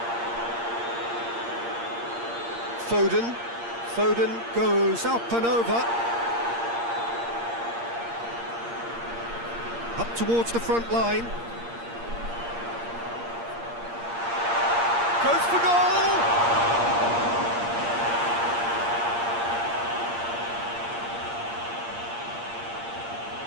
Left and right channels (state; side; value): late; left; 8.6 ms